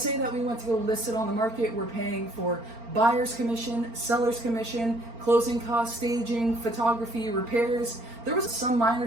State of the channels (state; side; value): late; left; 4.4 ms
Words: say that we went to go list it on the market. We're paying for buyer's commission, seller's commission, closing costs, staging, photography, repairs. There was some minor